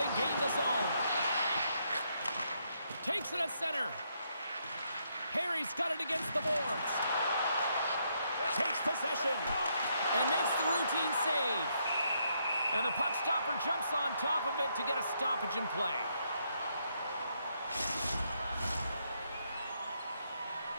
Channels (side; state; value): both; inverted; correlation -0.76